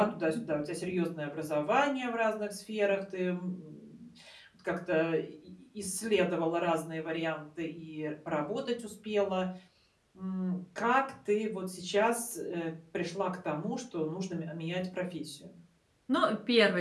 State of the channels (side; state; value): both; identical; correlation 1.00